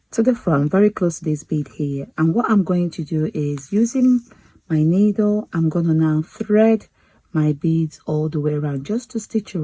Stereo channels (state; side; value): identical; both; correlation 1.00